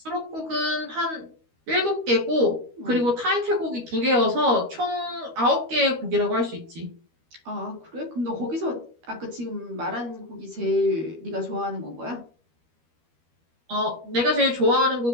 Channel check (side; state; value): left; late; 13 ms